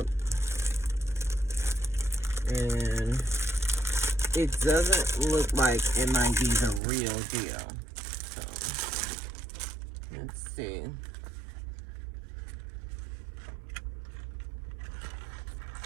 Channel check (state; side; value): drops out; left; at 6.8 s